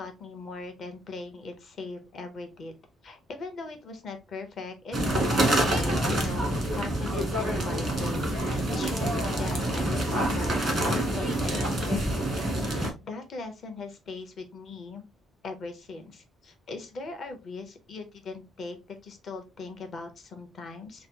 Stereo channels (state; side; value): normal; both; correlation 0.72